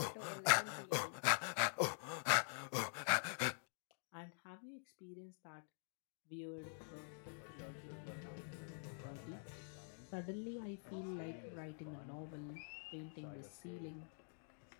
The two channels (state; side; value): silent; right; digital silence